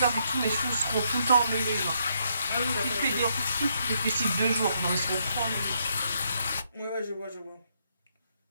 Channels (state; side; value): inverted; both; correlation -0.75